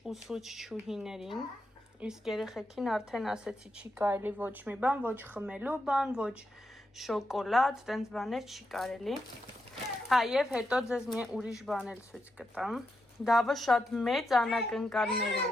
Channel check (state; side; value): normal; both; correlation 0.85